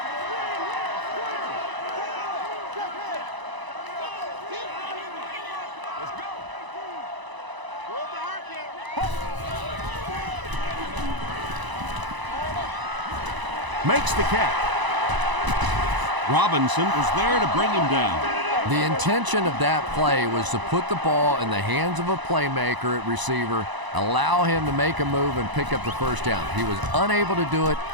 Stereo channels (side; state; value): left; late; 1.0 ms